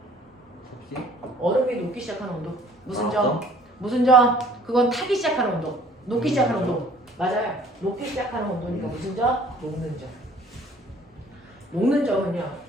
섭씨? 얼음이 녹기 시작하는 온도. 무슨 점? 무슨 점? 그건 타기 시작하는 온도. 녹기 시작하는 온도. 맞아요. 녹기 시작하는 온도니까 무슨 점? 녹는 점. 녹는 점은요.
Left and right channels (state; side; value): normal; both; correlation 0.54